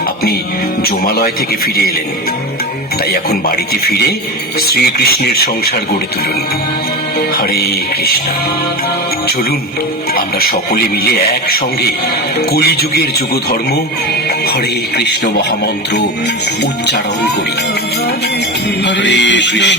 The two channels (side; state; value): both; normal; correlation 0.24